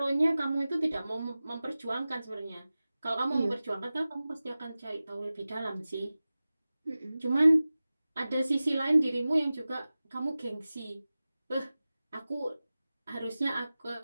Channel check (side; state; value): both; inverted; correlation -0.96